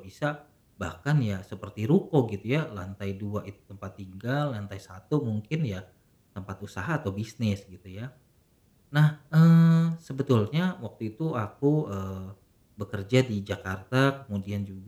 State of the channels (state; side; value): identical; both; correlation 1.00